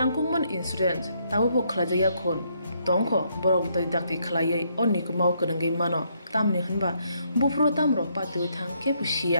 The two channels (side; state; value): both; inverted; correlation -0.73